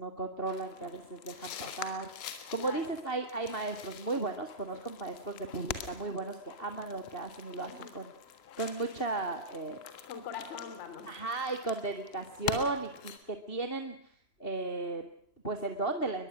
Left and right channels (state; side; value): late; right; 3.0 ms